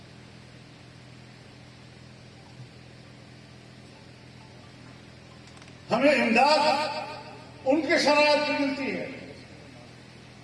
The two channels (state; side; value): identical; both; correlation 1.00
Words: ہمیں امداد ان کے شرائط پر ملتی ہے،